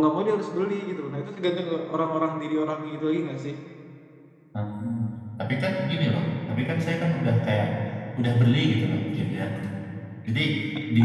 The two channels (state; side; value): identical; both; correlation 1.00